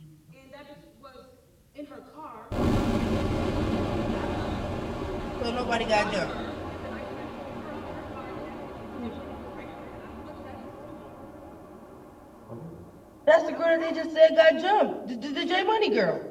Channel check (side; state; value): both; identical; correlation 1.00